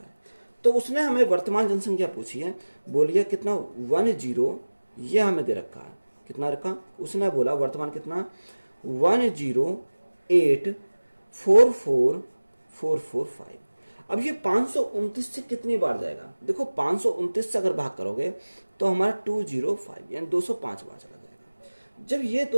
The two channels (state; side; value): inverted; both; correlation -1.00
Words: है। तो उसने हमें वर्तमान जनसंख्या पूछी है, बोलिए कितना 10 ये हमें दे रखा है, कितना रखा उसने बोला वर्तमान कितना 108,44445। अब ये 529 से कितनी बार जाएगा, देखो 529 से अगर भाग करोगे तो हमारा 205 यानी 205 बार चला जाएगा। जब ये